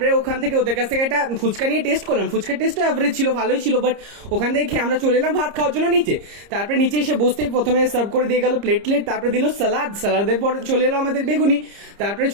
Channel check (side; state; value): left; late; 30 ms